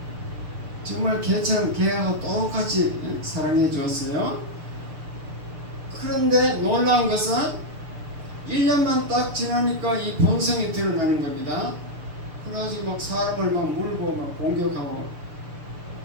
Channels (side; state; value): left; late; 6.7 ms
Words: 정말 개처럼 개하고 똑같이 사랑해 주었어요. 그런데 놀라운 것은 1년만 딱 지나니까 이 본성이 드러나는 겁니다. 그래가지고 막 사람을 막 물고 막 공격하고,